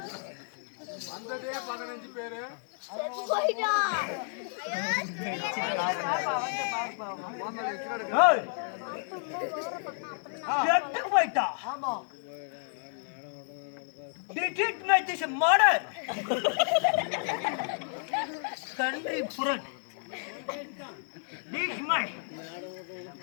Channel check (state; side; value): silent; right; 57 dB below the other